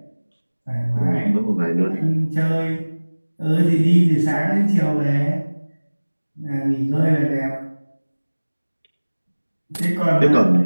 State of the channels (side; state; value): both; inverted; correlation -1.00